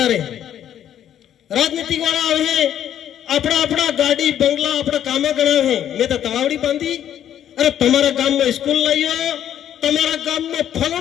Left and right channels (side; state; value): right; quieter; 10.4 dB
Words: रहे. राजनीतिक वाला आवे है अपना अपना गाड़ी बंगला अपना कामे गणा है. मैं तो तवावड़ी बांधी, अरे तुम्हारा गांव में स्कूल लाइयो, तुम्हारा गांव में